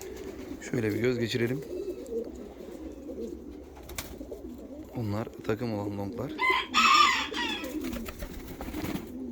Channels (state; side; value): identical; both; correlation 1.00